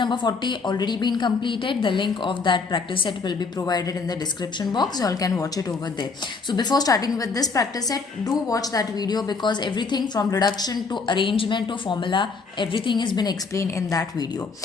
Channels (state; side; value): quieter; right; 4.5 dB